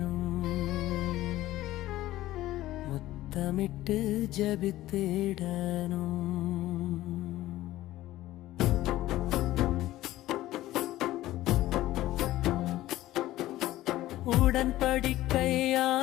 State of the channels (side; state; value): right; quieter; 15.6 dB